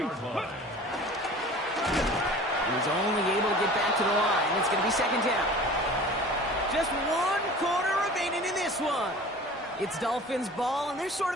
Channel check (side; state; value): both; normal; correlation 0.42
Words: line. He's only able to get back to the line. It's going to be 2nd down. Just 1 quarter remaining in this one. It's Dolphins ball, and they're sort